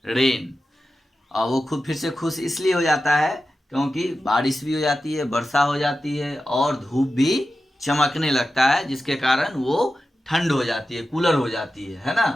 rain. और वो खुद फिर से खुश इसलिए हो जाता है क्योंकि बारिश भी हो जाती है, वर्षा हो जाती है और धूप भी चमकने लगता है, जिसके कारण वो ठंड हो जाती है, कूलर हो जाती है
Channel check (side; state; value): both; normal; correlation 0.92